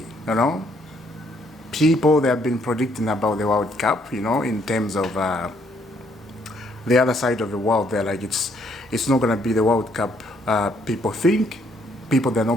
you know? People, they have been predicting about the World Cup, you know, in terms of the other side of the world. They're like, it's not gonna be the World Cup people think. People, they're not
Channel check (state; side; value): normal; both; correlation 0.69